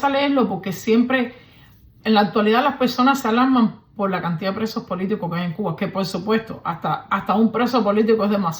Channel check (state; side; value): identical; both; correlation 1.00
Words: leerlo porque siempre, en la actualidad, las personas se alarman por la cantidad de presos políticos que hay en Cuba, que por supuesto, hasta un preso político es